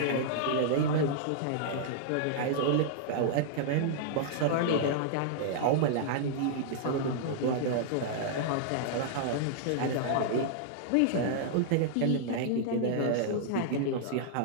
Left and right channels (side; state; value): both; different; correlation -0.01